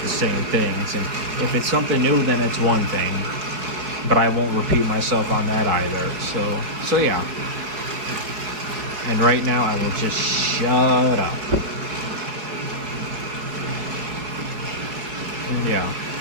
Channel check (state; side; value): late; left; 4.9 ms